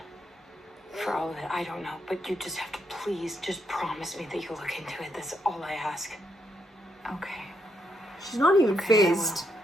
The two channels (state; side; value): normal; both; correlation 0.78